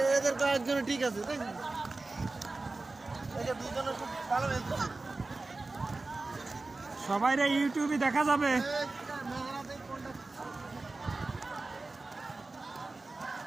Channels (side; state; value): left; quieter; 3.4 dB